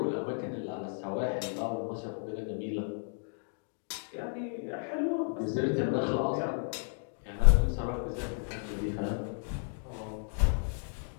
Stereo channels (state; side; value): silent; right; 56 dB below the other